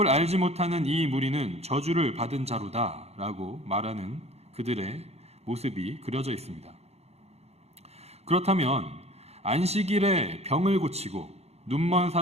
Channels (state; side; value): late; left; 0.31 ms